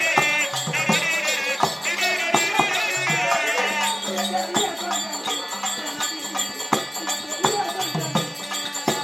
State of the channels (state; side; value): identical; both; correlation 1.00